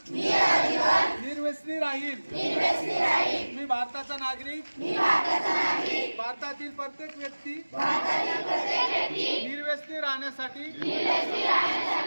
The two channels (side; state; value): both; inverted; correlation -1.00